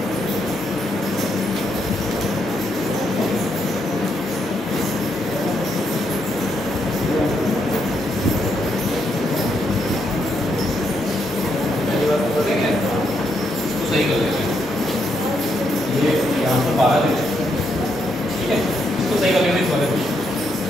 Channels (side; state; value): both; normal; correlation 0.78